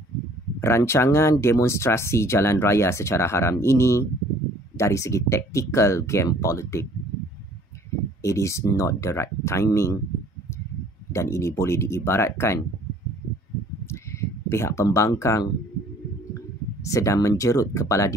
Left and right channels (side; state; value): both; normal; correlation 0.55